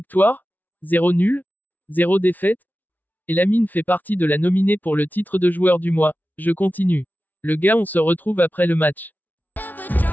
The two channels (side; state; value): right; late; 0.082 ms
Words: 0 nul, 0 défaite. Et Lamine fait partie de la nominée pour le titre de joueur du mois. Je continue. Le gars, on se retrouve après le match.